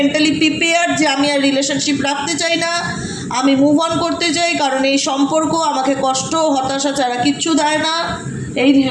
প্রিপেয়ার যে আমি আর রিলেশনশিপ রাখতে চাই না, আমি মুভ অন করতে চাই, কারণ এই সম্পর্ক আমাকে কষ্ট, হতাশা ছাড়া কিচ্ছু দেয় না, এই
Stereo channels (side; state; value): both; identical; correlation 1.00